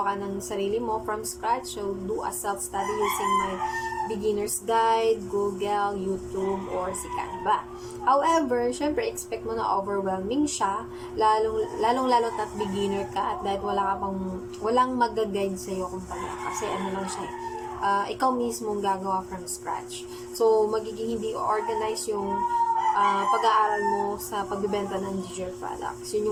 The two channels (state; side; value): identical; both; correlation 1.00